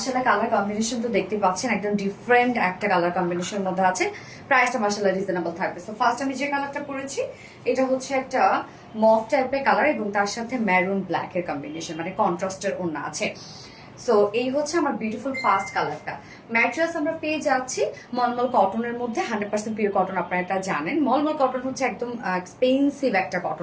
কালার কম্বিনেশন তো দেখতে পাচ্ছেন, একদম ডিফারেন্ট একটা কালার কম্বিনেশনের মধ্যে আছে। প্রাইসটা মাশাআল্লাহ রিজনেবল থাকবে। সো ফার্স্ট আমি যে কালারটা পরেছি এটা হচ্ছে একটা মফ টাইপের কালার এবং তার সাথে ম্যারুন ব্ল্যাক এর কম্বিনেশন, মানে কন্ট্রাস্টের ওড়না আছে। সো এই হচ্ছে আমার বিউটিফুল ফার্স্ট কালারটা। ম্যাট্রেস আমরা পেয়ে যাচ্ছি মলমল কটনের মধ্যে, 100% পিওর কটন। আপনারা এটা জানেন, মলমল কটন হচ্ছে একদম এক্সপেন্সিভ একটা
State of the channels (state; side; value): identical; both; correlation 1.00